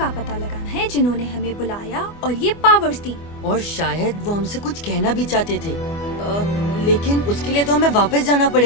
पता लगाना है जिन्होंने हमें बुलाया और ये पावर्स दी। और शायद वो हमसे कुछ कहना भी चाहते थे, लेकिन उसके लिए तो हमें वापस जाना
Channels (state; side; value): late; right; 24 ms